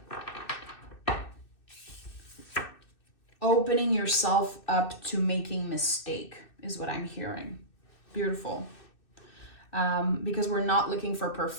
Opening yourself up to making mistake is what I'm hearing. Beautiful. Because we're not looking for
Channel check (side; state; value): right; late; 2.6 ms